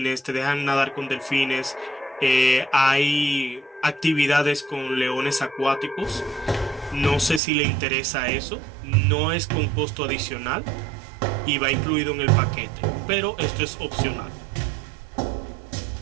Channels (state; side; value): drops out; left; at 7.4 s